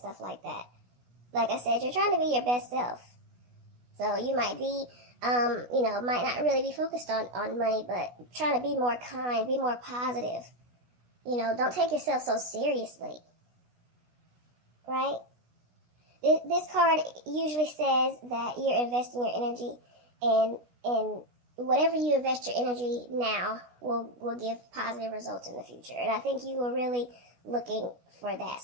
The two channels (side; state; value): left; late; 16 ms